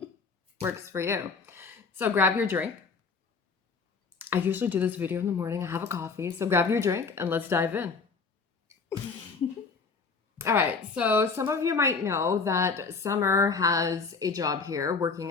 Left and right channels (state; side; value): quieter; right; 4.8 dB